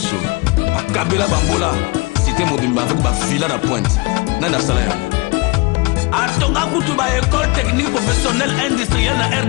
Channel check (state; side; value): quieter; right; 26.1 dB